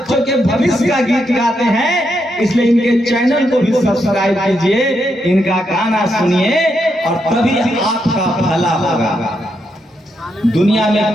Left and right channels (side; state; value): both; normal; correlation 0.81